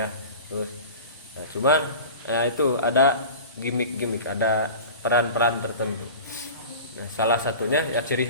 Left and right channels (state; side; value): inverted; both; correlation -0.36